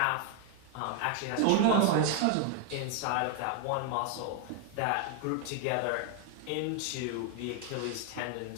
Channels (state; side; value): different; both; correlation 0.00